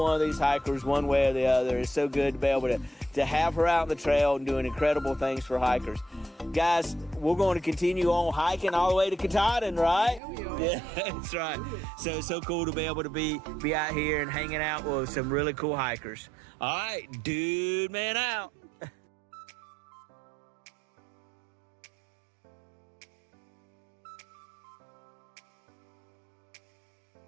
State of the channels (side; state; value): left; drops out; at 10.2 s